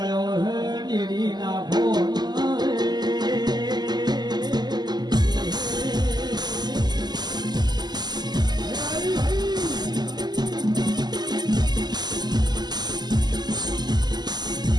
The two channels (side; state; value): left; late; 0.20 ms